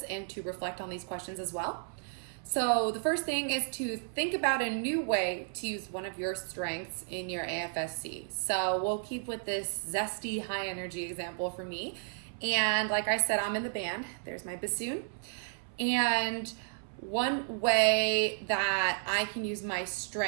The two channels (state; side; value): silent; left; 56 dB below the other